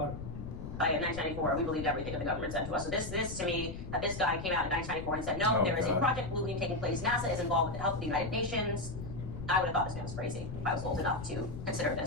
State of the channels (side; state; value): left; noise; rumble, 8 dB below the sound